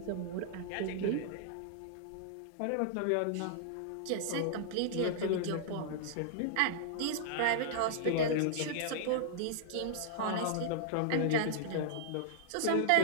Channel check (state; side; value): different; both; correlation -0.01